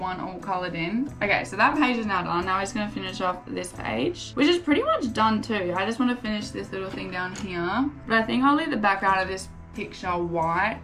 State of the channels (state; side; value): identical; both; correlation 1.00